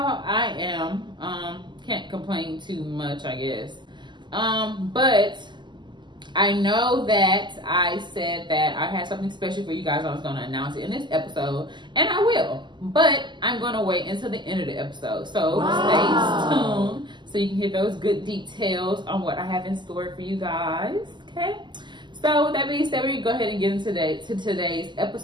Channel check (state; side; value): late; left; 0.22 ms